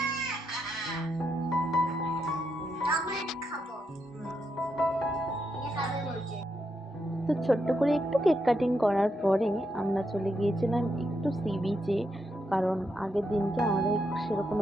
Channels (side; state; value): both; normal; correlation 0.82